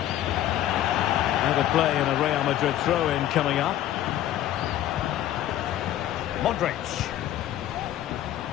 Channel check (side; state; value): right; quieter; 12.7 dB